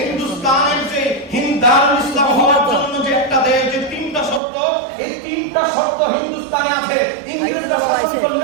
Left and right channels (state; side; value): drops out; left; at 4.4 s